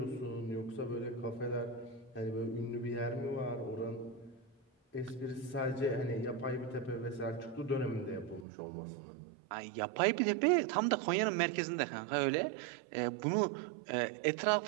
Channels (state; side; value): drops out; left; at 8.5 s